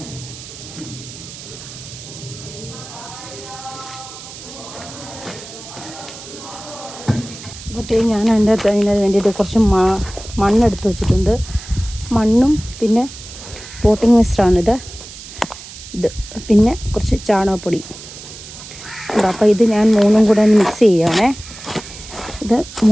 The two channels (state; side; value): noise; right; hiss, 15 dB below the sound